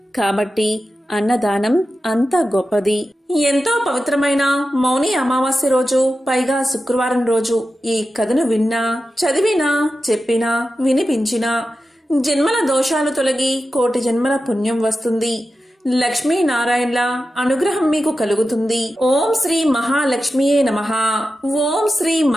కాబట్టి అన్నదానం అంత గొప్పది. ఎంతో పవిత్రమైన మౌని అమావాస్య రోజు, పైగా శుక్రవారం రోజు ఈ కథను విన్నా, చదివినా, చెప్పినా, వినిపించినా జన్మల దోషాలు తొలగి కోటి జన్మల పుణ్యం వస్తుంది. లక్ష్మీనారాయణల అనుగ్రహం మీకు కలుగుతుంది. ఓం శ్రీ మహాలక్ష్మియే నమః. ఓం శ్రీ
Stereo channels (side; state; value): both; normal; correlation 0.92